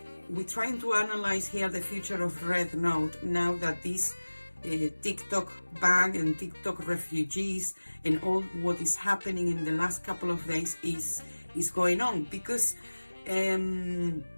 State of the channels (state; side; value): inverted; both; correlation -1.00